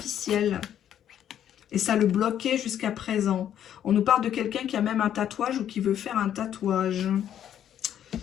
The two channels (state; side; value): quieter; right; 10.2 dB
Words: Et ça le bloquait jusqu'à présent. On nous parle de quelqu'un qui a même un tatouage ou qui veut faire un tatouage.